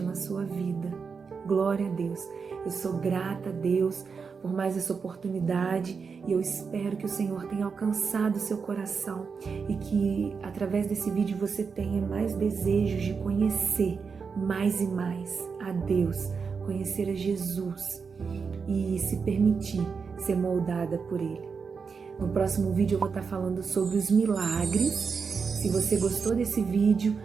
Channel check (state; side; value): quieter; left; 5.5 dB